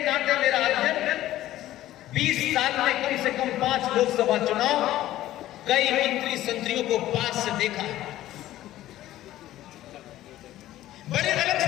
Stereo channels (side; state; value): right; quieter; 14.3 dB